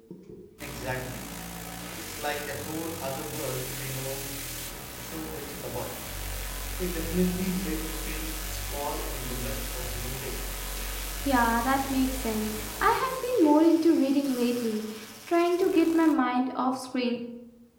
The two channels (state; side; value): identical; both; correlation 1.00